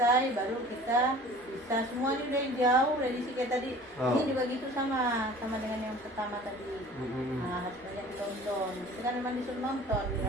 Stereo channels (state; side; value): normal; both; correlation 0.45